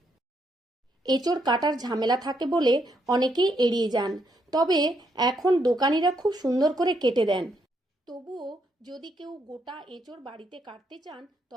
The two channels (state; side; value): normal; both; correlation 0.76